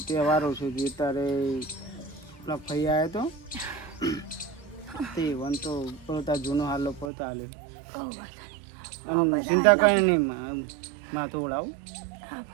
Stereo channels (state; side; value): drops out; left; at 7.1 s